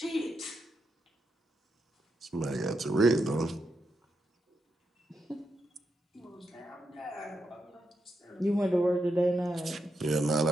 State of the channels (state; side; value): normal; both; correlation 0.84